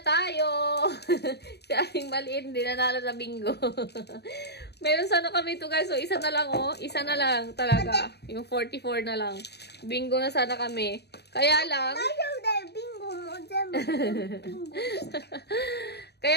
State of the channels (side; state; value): right; late; 0.48 ms